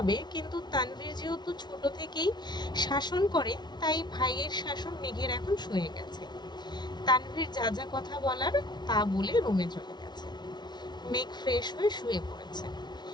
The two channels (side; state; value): right; late; 0.20 ms